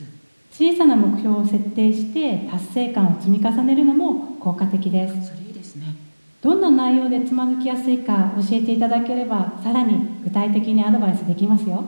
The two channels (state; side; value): inverted; both; correlation -1.00